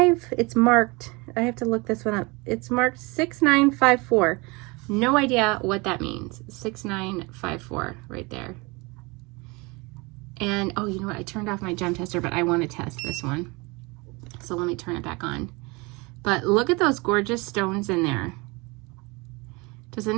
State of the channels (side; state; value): left; quieter; 26.2 dB